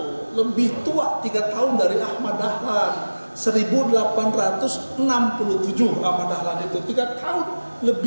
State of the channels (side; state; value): both; inverted; correlation -1.00